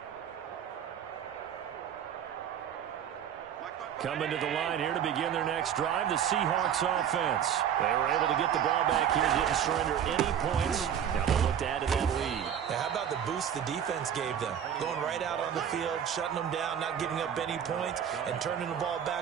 Coming to the line here to begin their next drive, the Seahawks offense. They were able to get the ball back here, didn't surrender any points. Now they'll look to add to that lead. Now, how about the boost the defense gave them? Going right out on the field, shutting them down, not giving up any points, and turning the ball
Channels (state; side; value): quieter; left; 9.0 dB